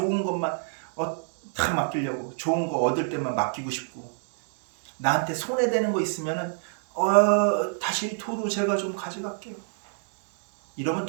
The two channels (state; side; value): silent; left; digital silence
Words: 것만 다 맡기려고 좋은 거 얻을 때만 맡기고 싶고 나한테 손해되는 거 있으면은 다시 도로 제가 좀 가져갈게요. 이러면